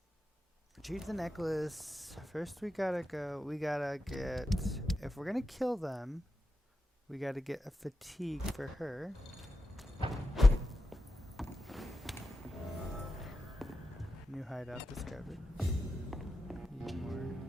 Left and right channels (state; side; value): normal; both; correlation 0.90